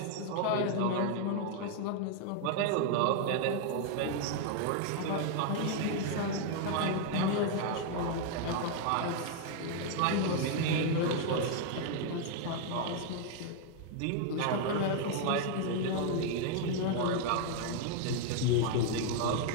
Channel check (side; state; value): both; different; correlation 0.00